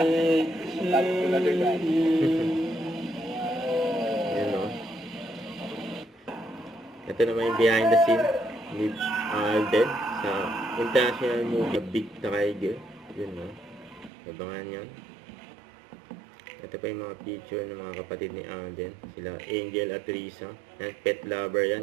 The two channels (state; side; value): drops out; left; at 14.1 s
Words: birthday to you. Yan, oh. Ito naman yung behind the scene ni Alden sa international movie Big Tiger. Yun, oh. Abangan yan. Ito pa yung mga picture ng mga kapatid ni Alden. Sila Angel at Risa. Yan, pet lover